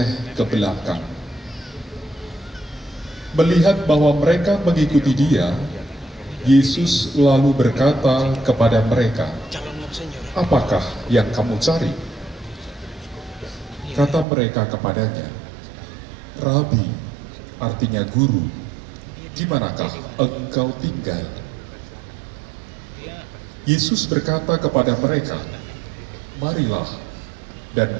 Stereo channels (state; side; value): drops out; left; at 14.2 s